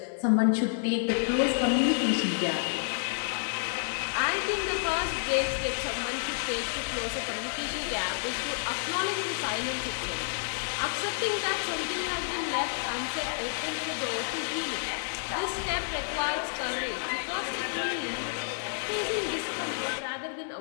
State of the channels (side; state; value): right; silent; 58 dB below the other